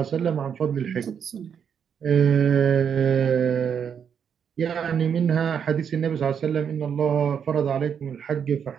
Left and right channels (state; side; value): quieter; left; 7.6 dB